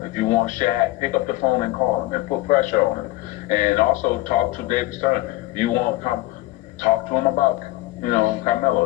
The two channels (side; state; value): right; quieter; 18.4 dB